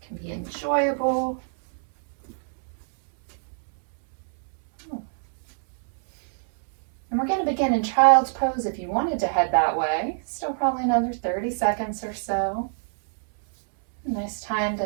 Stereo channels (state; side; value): silent; left; digital silence